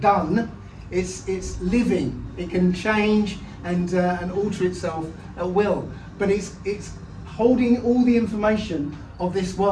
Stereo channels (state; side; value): identical; both; correlation 1.00